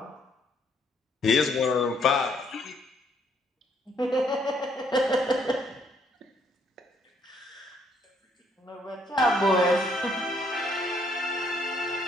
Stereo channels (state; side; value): normal; both; correlation 0.68